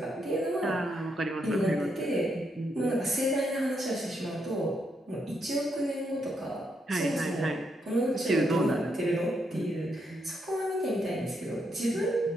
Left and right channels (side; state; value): both; normal; correlation 0.79